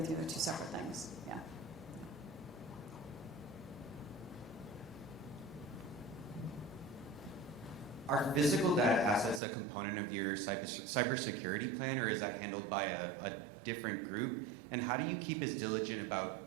you, they're two separate things, yeah. Are physical data assets a component of your cybersecurity plan, or is that handled by a different group? And how do you keep as diligent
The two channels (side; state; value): left; drops out; at 9.4 s